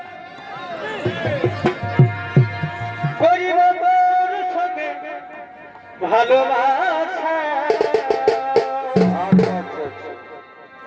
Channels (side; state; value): both; identical; correlation 1.00